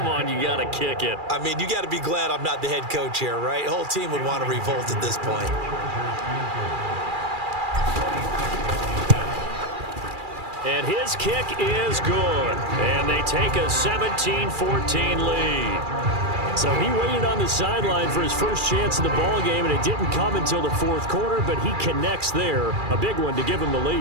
on, you got to kick it. I mean, you got to be glad I'm not the head coach here, right? The whole team would want to revolt at this point. And his kick is good. And they take a 17-14 lead. So he waited on the sideline for his first chance in the ball game, and it didn't come until the 4th quarter, but he connects there. A big one to give him the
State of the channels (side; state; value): left; late; 2.4 ms